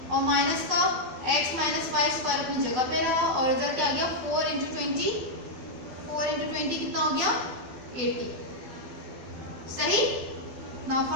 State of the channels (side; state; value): left; late; 12 ms